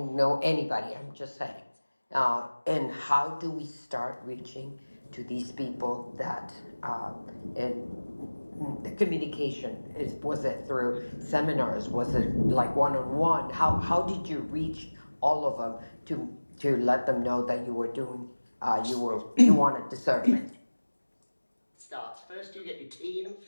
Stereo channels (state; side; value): inverted; both; correlation -1.00